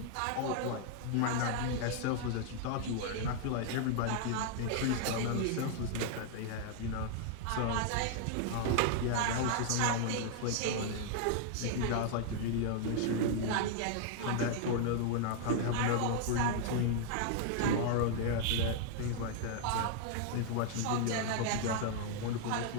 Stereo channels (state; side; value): different; both; correlation 0.00